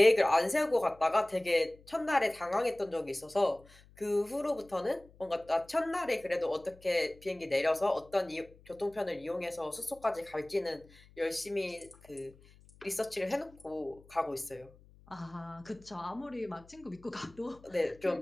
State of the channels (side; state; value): left; noise; hum, 25 dB below the sound